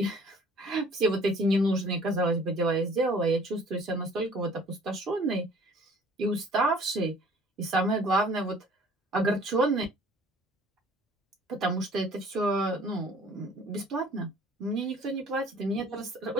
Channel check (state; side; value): normal; both; correlation 0.53